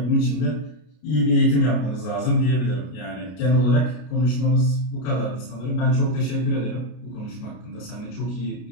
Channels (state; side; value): late; right; 33 ms